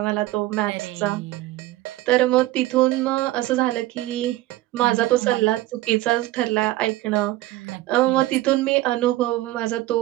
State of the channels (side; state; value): left; quieter; 16.6 dB